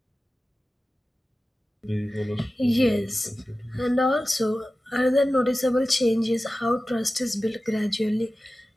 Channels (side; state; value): both; normal; correlation 0.95